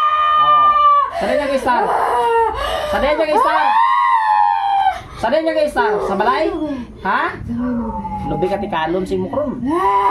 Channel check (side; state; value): both; identical; correlation 1.00